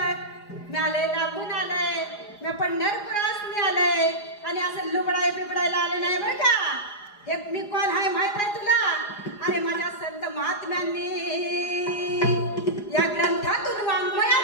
मी आलंय लांबून आलंय, मी पंढरपुरासनी आलंय आणि असं लुबडाय बिबडायला आले नाही बरं का. हे मी कोण आहे माहित आहे तुला? अरे माझ्या संत महात्म्यांनी या ग्रंथातून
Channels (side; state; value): right; late; 4.9 ms